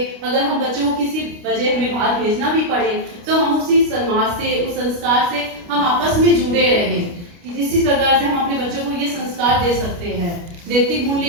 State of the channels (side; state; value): left; late; 29 ms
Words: अगर हम बच्चों को किसी वजह हमें बाहर भेजना भी पड़े तो हम उसी समाज से, उस संस्कार से हम आपस में जुड़े रहे कि इसी प्रकार से हम अपने बच्चों को ये संस्कार दे सकते हैं। नैतिक